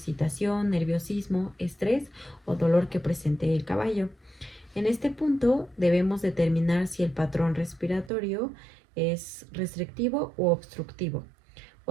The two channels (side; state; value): left; drops out; at 8.1 s